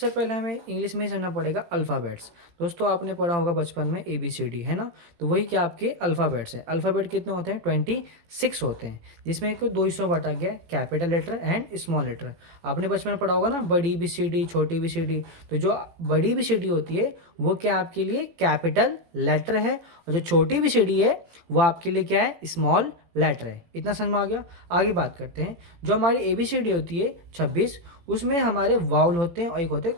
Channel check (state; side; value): late; left; 18 ms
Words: पहले हमें इंग्लिश में ही समझना पड़ेगा अल्फ़ाबेट्स। दोस्तों, आपने पढ़ा होगा बचपन में ABCD, है ना। तो वही क्या आपके अल्फ़ाबेट्स हैं। अल्फ़ाबेट कितने होते हैं? 26 होते हैं, जिसमें एक दो हिस्सों में बांटा गया है, capital letter and small letter. आपने बचपन में पढ़ा होगा ना, बड़ी BCD, छोटी BCD। तो जो बड़ी BCD होती है वो क्या आपके लिए कैपिटल लेटर है, और जो छोटी BCD है वो आपके लिए क्या है? स्मॉल लेटर है। इतना समझ में आ गया। आगे बात करते हैं। जो हमारी ABCD होती है 26, उसमें हमारे वाउल होते हैं और एक होते हैं